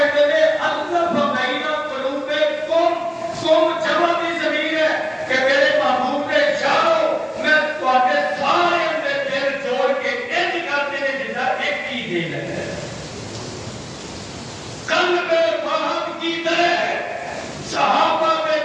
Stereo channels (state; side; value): identical; both; correlation 1.00